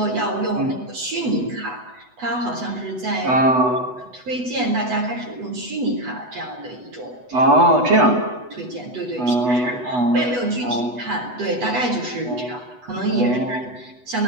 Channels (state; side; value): late; left; 8.1 ms